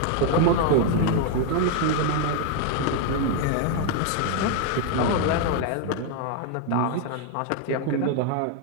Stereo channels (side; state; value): both; different; correlation 0.00